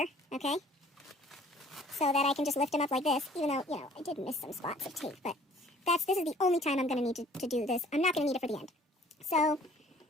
okay, so that I can just lift them up like this, even though, you know, I did miss some spots of tape, but this is the only time I'm going to need to do this. I'm not going to need it for the end. So,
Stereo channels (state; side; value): normal; both; correlation 0.54